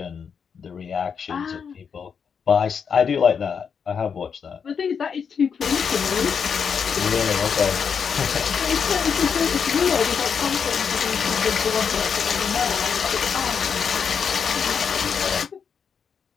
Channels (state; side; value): quieter; right; 6.6 dB